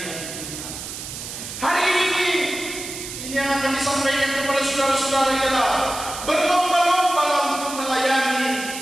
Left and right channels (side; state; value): right; noise; hiss, 9 dB below the sound